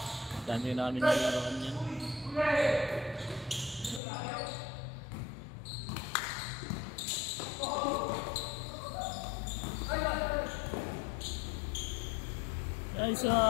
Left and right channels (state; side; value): drops out; right; at 4.0 s